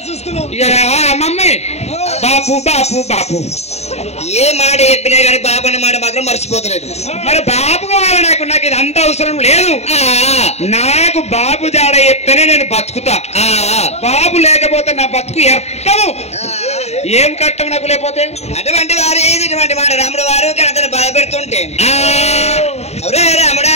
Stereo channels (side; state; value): right; late; 0.31 ms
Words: మమ్మీ బాపు బాపు బాపు ఏ మాట చెప్పినా కానీ బాబు అనే మాట మాత్రం మర్చిపోతలేదు. మరి బాబు కావాలి నాకు ఇది అంత అవసరం లేదు. నాకు బాబు జాడ చెప్తేనే నేను బతుకుతా. బాబు లేకపోతే నా బతుకు ఎత్తము. ఏం కట్టం నాకు లేకపోతే? అటువంటి వారు ఇటువంటి మాట రాముడు వారు కనతను బాధ పెడుతుంటే రాముడా